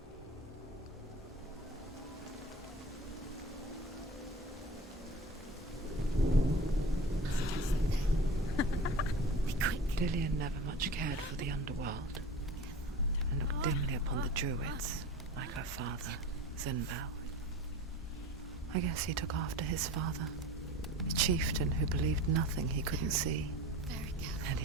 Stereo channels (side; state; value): both; normal; correlation 0.36